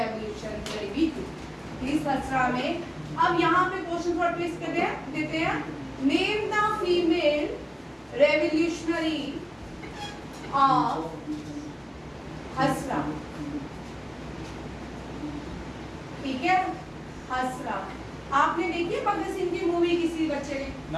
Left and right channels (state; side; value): identical; both; correlation 1.00